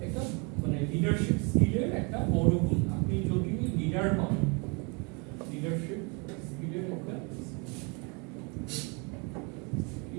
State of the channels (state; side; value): quieter; left; 32.4 dB